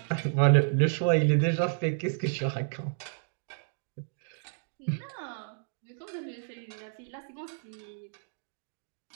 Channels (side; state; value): left; silent; digital silence